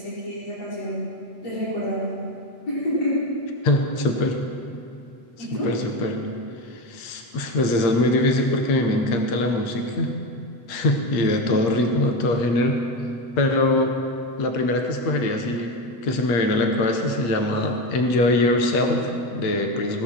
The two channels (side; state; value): right; late; 8.6 ms